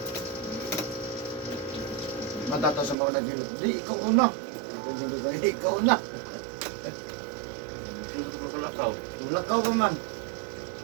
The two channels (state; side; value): drops out; left; at 3.0 s